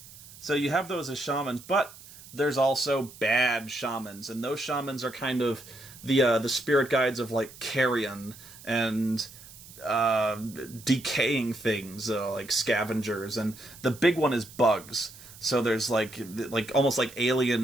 So you have those as shamans, but there's also bad shamans, and those shamans are kind of the spirit guides of like carrion and decaying things, like scavengers, and the big one is bugs. So there's like almost like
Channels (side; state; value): right; noise; hiss, 19 dB below the sound